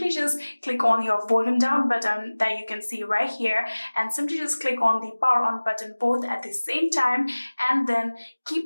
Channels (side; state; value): both; inverted; correlation -1.00